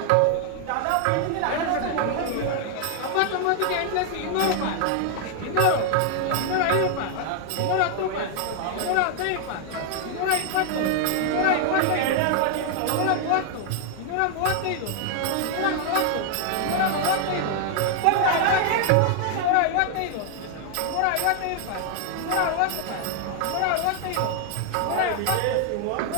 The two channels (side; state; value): both; different; correlation 0.00